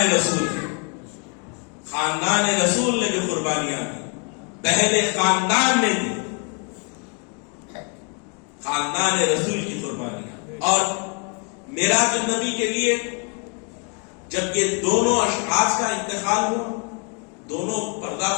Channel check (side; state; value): right; quieter; 37.8 dB